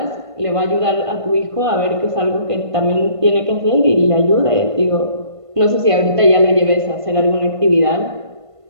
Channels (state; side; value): late; left; 1.5 ms